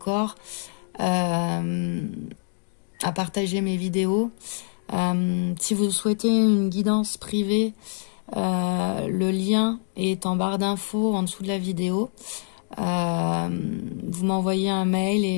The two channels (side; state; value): right; silent; 62 dB below the other